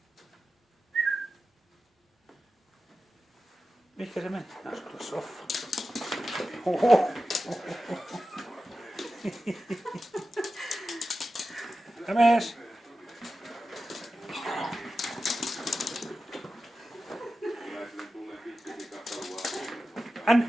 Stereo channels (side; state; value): both; normal; correlation 0.92